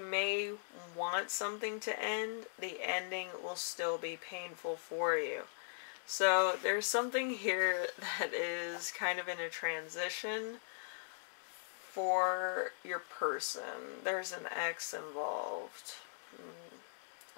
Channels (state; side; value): silent; right; digital silence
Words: want something to end, the ending will still be painful for you. So there's something here that is kind of in a transition for your person. There's an ex involved.